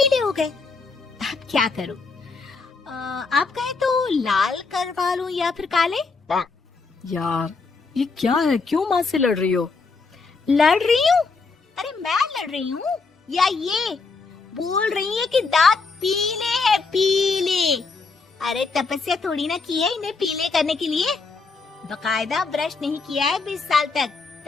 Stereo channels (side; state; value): right; quieter; 4.3 dB